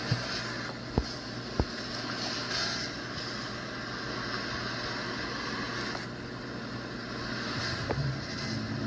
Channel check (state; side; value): identical; both; correlation 1.00